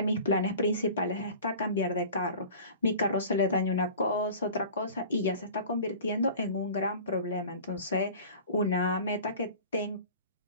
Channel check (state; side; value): inverted; both; correlation -0.41